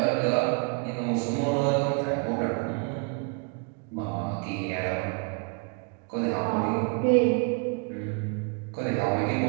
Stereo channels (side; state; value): left; quieter; 35.6 dB